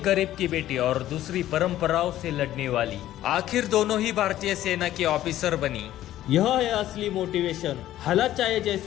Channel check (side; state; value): right; quieter; 13.4 dB